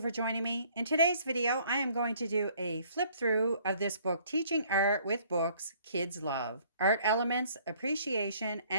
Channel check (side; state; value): both; inverted; correlation -0.59